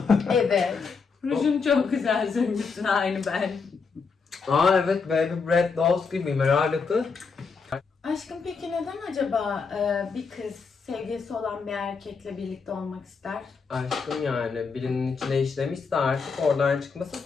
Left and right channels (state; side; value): quieter; right; 5.1 dB